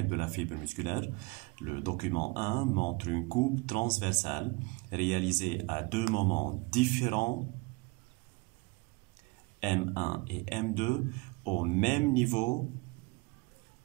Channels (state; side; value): quieter; left; 25.2 dB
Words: de la fibre musculaire. Le document 1 montre une coupe transversale réalisée à deux moments différents, M1 et M2, au même niveau